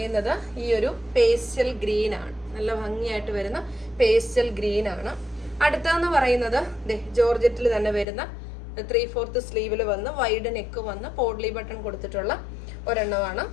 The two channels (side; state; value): right; drops out; at 8.1 s